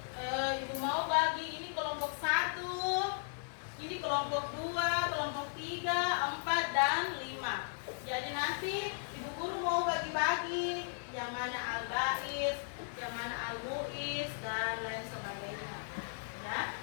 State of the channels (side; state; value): right; silent; digital silence